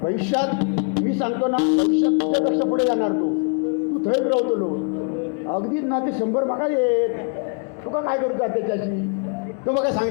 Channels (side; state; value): right; quieter; 39.5 dB